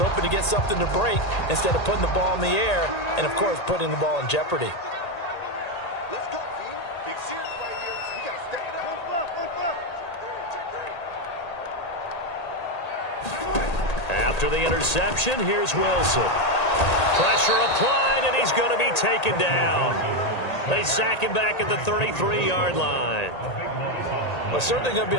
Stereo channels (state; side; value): late; right; 1.8 ms